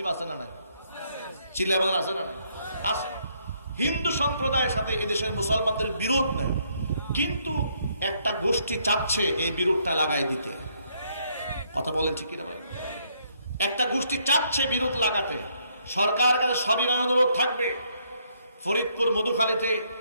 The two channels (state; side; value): inverted; both; correlation -0.71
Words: আছে না নাই? চিল্লায় বলেন আছে না নাই? আছে। হিন্দু সম্প্রদায়ের সাথে এদেশের মুসলমানদের বিরোধ নাই, কিন্তু একটা গোষ্ঠী চাচ্ছে এই বিরোধটা লাগাই দিতে। কথা বলেন ঠিক কিনা বলেন। একটা গোষ্ঠী চাচ্ছে বিরোধ লাগাতে। সরকার কাছে সবিনয় অনুরোধ থাকবে, ফরিদপুর মধুখালীতে